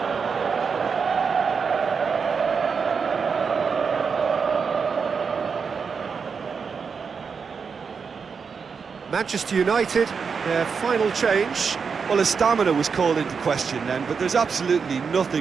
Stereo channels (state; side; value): quieter; left; 5.7 dB